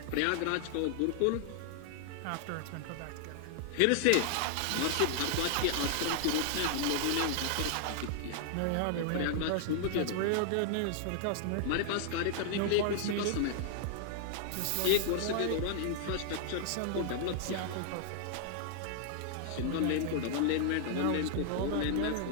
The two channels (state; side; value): different; both; correlation 0.00